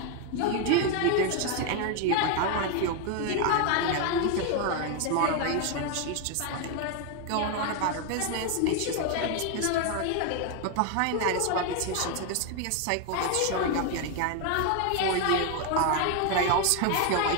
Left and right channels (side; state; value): both; different; correlation 0.01